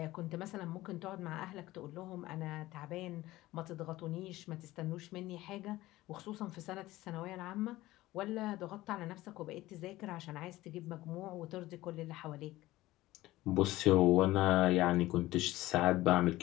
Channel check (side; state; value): right; quieter; 17.3 dB